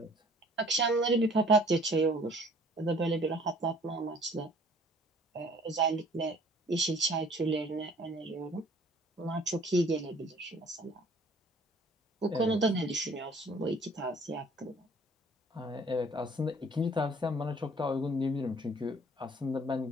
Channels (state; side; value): normal; both; correlation 0.54